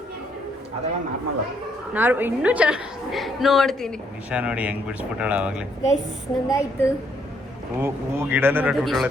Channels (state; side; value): normal; both; correlation 0.71